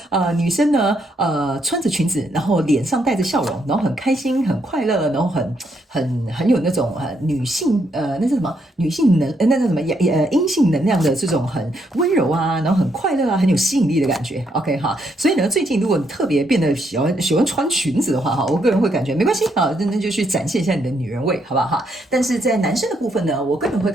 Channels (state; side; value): normal; both; correlation 0.75